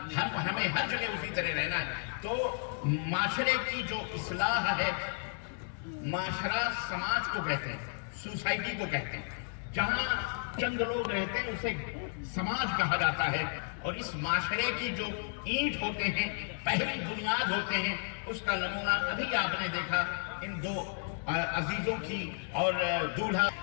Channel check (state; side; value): silent; right; 56 dB below the other